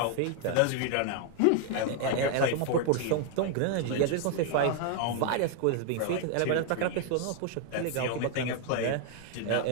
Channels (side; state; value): both; different; correlation 0.00